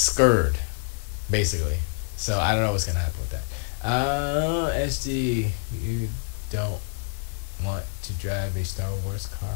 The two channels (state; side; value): silent; right; digital silence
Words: basically. So I don't know what's gonna happen with that. Esgee, you don't want to drive a Star Wars